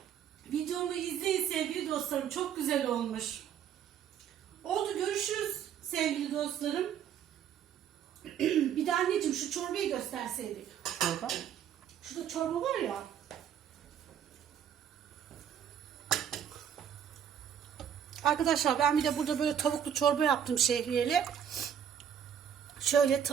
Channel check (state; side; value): quieter; left; 8.9 dB